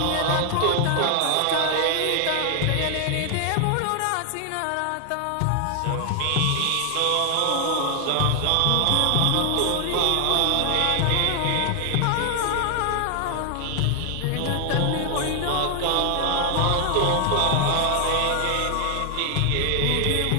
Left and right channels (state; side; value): different; both; correlation 0.00